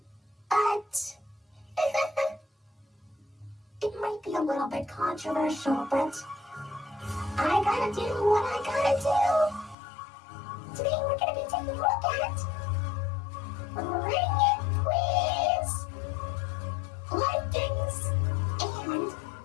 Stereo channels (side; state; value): right; drops out; at 9.8 s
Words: But it might be a little bit controversial, but I gotta do what I gotta do. Today we're gonna be taking a look at Ring It Quiz, likings, and